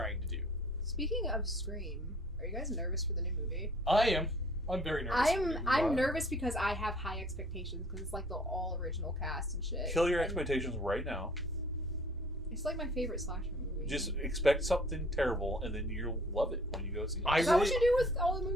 to do. Speaking of Scream, are you guys nervous for the new movie? I am. I'm very nervous. I'm nervous because I have high expectations because it's like the all original cast and shit. Kill your And expectations right now. It's like my favorite slasher movie. Just expect something terrible, and then you'll love it when you go see it. Is that what you do with all the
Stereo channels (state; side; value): normal; both; correlation 0.54